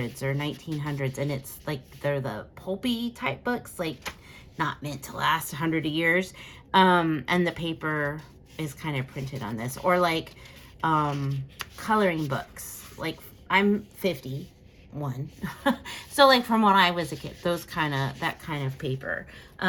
or 1900s, and it's like they're the pulpy type books, like not meant to last 100 years, and the paper is kind of printed on this, or like coloring books. Like I'm 51, so like from when I was a kid, that kind of paper.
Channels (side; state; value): both; identical; correlation 1.00